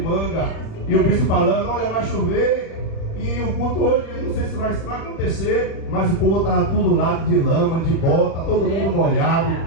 e o bispo falando: olha, vai chover. E o culto hoje, não sei se vai acontecer, mas o povo estava tudo lá de lama, de bota, todo mundo molhado,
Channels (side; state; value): right; late; 37 ms